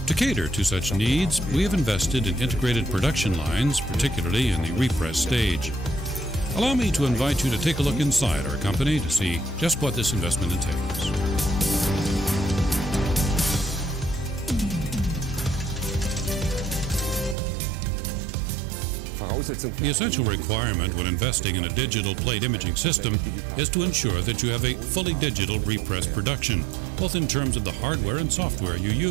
To cater to such needs, we have invested in integrated production lines, particularly in the repress stage. Allow me to invite you to take a look inside our company to see just what this investment entails. The essential requirement when investing in a digital plate imaging system is to ensure that you have a fully digital repress production, both in terms of the hardware and software you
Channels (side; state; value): left; drops out; at 17.4 s